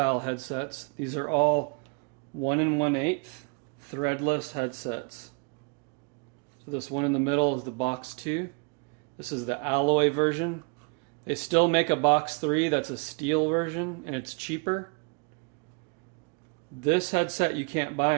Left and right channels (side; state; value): left; quieter; 34.9 dB